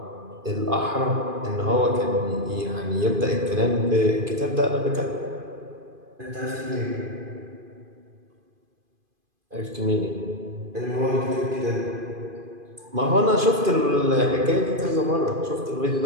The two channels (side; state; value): left; late; 2.5 ms